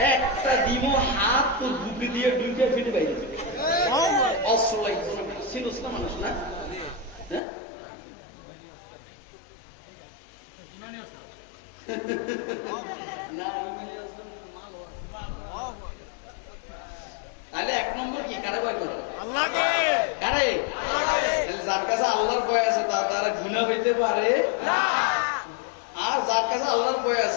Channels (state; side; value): drops out; right; at 7.4 s